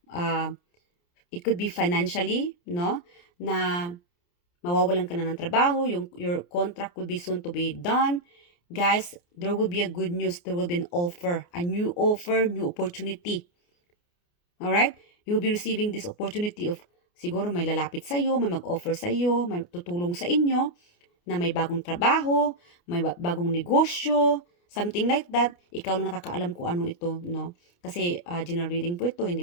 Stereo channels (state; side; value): late; right; 29 ms